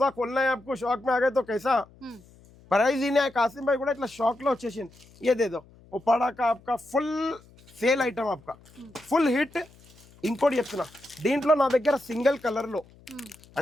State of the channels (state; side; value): noise; left; hum, 26 dB below the sound